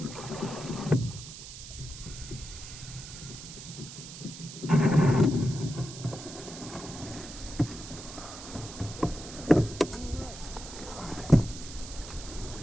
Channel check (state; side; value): noise; right; hiss, 12 dB below the sound